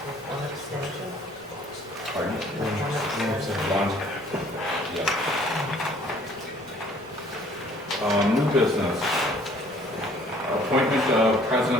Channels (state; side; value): noise; right; rumble, 28 dB below the sound